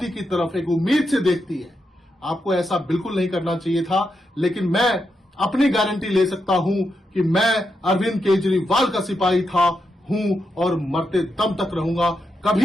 की तरफ एक उम्मीद से देखती है। आपको ऐसा बिल्कुल नहीं करना चाहिए था। लेकिन मैं अपनी गारंटी ले सकता हूं कि मैं अरविंद केजरीवाल का सिपाही हूं और मरते दम तक रहूंगा,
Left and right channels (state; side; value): normal; both; correlation 0.84